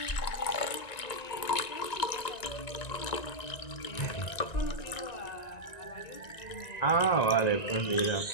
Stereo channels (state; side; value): late; right; 1.9 ms